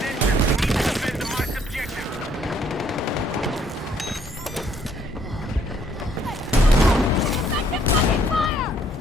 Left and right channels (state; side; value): normal; both; correlation 0.66